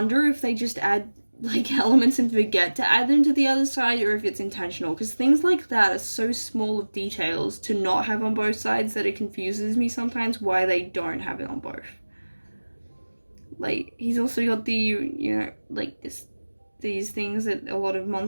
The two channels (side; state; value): both; inverted; correlation -1.00